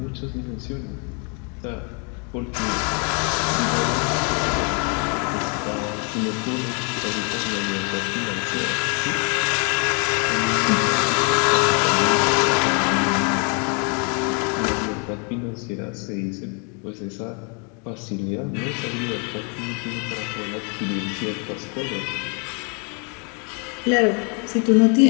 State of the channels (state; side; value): quieter; right; 36.2 dB